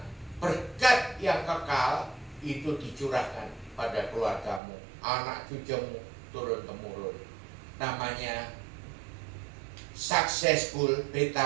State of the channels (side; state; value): left; drops out; at 4.6 s